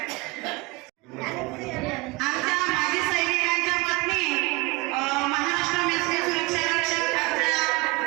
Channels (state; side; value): quieter; left; 24.5 dB